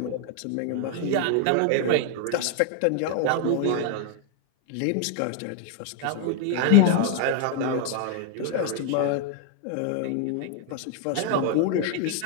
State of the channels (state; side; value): different; both; correlation 0.00